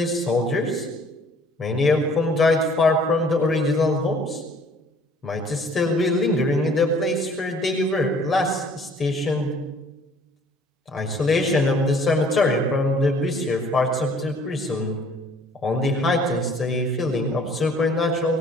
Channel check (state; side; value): normal; both; correlation 0.56